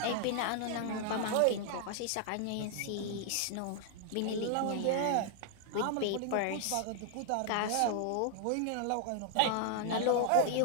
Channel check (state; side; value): different; both; correlation 0.00